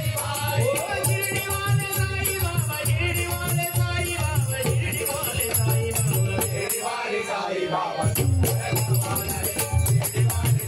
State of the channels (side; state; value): both; identical; correlation 1.00